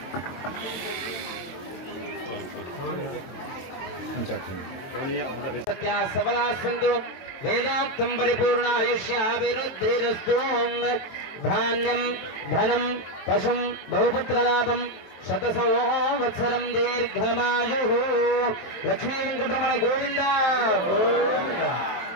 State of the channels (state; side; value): late; right; 23 ms